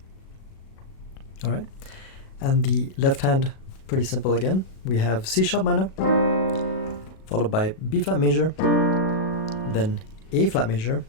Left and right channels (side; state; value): right; late; 37 ms